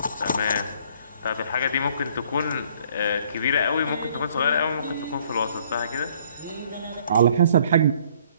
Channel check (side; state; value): both; inverted; correlation -0.60